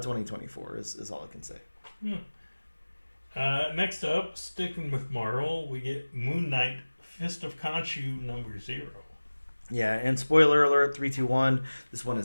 2024 is all I can say. Next up, sticking with Marvel, we get Moon Knight Fist of Khonshu #0. Yeah, and spoiler alert, 321, this one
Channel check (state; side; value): inverted; both; correlation -1.00